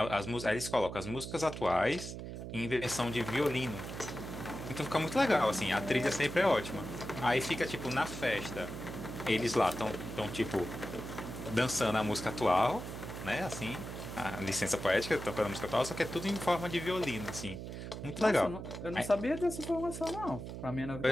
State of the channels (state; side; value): noise; right; hum, 8 dB below the sound